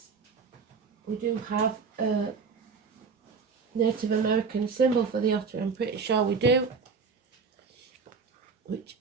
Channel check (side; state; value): left; quieter; 5.2 dB